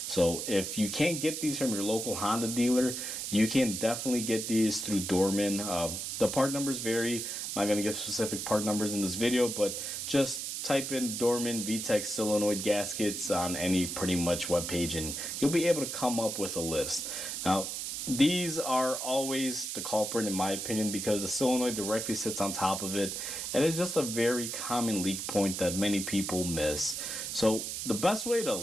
So if you can't get these from your local Honda dealer, you can definitely get these through Dorman. The part numbers vary. I'm not going to give specific part numbers in this video, but just type in Dorman VTEC solenoid gaskets on any pretty much web page and you'll be able to come up with a list. Now, these are always the culprit in my opinion because the solenoid directly sits on top of it, and it's just a very common leak point that many people miss. So the best way to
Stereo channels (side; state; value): right; noise; hiss, 4 dB below the sound